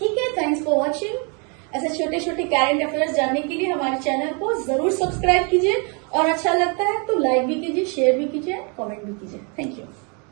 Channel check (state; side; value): quieter; left; 35.1 dB